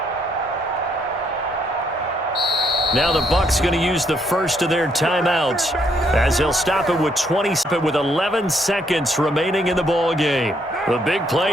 Now the Bucs going to use the first of their timeouts as they'll stop it with 11 seconds remaining in the ball game. The big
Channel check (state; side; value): normal; both; correlation 0.71